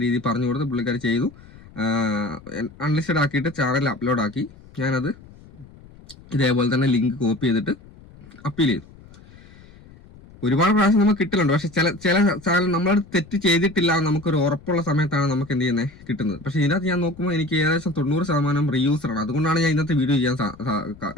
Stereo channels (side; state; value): left; noise; rumble, 22 dB below the sound